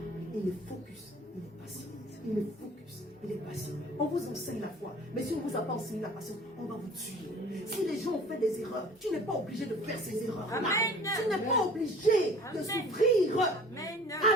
Il est focus. Il est patient. Il est focus. Il est patient. On vous enseigne la foi. Mais si on ne vous a pas enseigné la patience, on va vous tuer. Si les gens ont fait des erreurs, tu n'es pas obligé de faire ces erreurs. Amen. Tu n'es pas obligé de Amen. souffrir. Amen.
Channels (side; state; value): both; normal; correlation 0.47